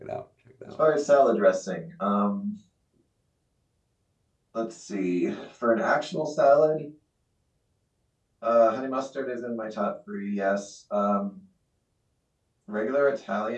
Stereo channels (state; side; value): identical; both; correlation 1.00